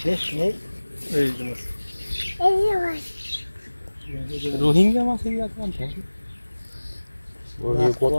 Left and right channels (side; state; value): both; inverted; correlation -1.00